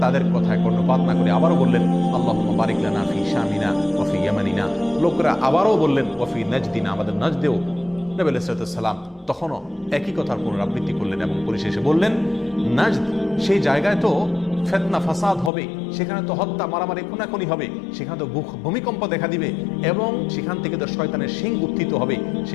তাদের কথায় কর্ণপাত না করে আবারও বললেন, আল্লাহুম্মা বারিক লানা ফি শামিনা ওয়া ফি ইয়ামানিনা। লোকেরা আবারও বললেন, ওয়া ফি নাজদিনা, আমাদের নজদেও। নবী আলাইহিস সালাম তখনও একই কথার পুনরাবৃত্তি করলেন এবং পরিশেষে বললেন, নাজদ সেই জায়গায় তো ফিতনা ফাসাদ হবে, সেখানে তো হত্যা মারামারি খুনাখুনি হবে, সেখানে তো ভূমিকম্প দেখা দিবে এবং সেখান থেকে তো শয়তানের শিং উত্থিত হবে,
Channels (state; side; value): drops out; right; at 15.5 s